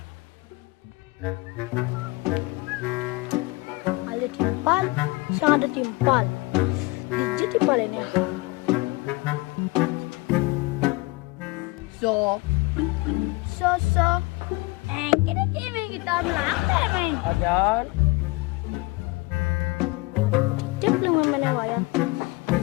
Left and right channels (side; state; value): right; quieter; 24.0 dB